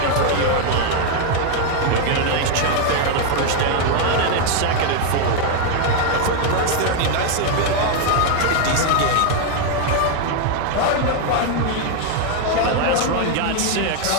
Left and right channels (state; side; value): different; both; correlation 0.01